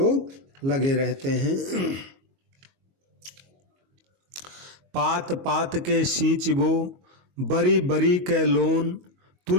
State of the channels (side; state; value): left; late; 22 ms